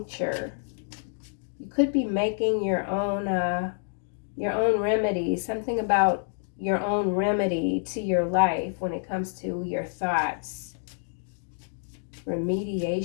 You could be making your own remedy, something about your own remedy to your life when it comes to your thoughts.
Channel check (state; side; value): silent; right; digital silence